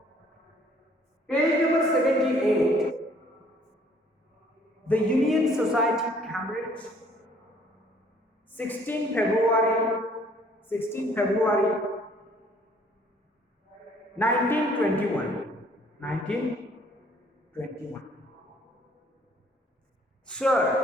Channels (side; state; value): both; normal; correlation 0.60